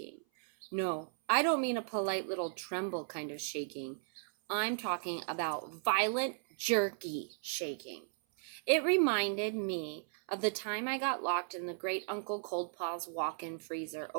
No, I don't mean a polite little tremble kind of shaking. I'm talking about violent, jerky shaking. It reminded me of the time I got locked in the great Uncle Coldpaw's walk-in freezer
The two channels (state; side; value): silent; left; 54 dB below the other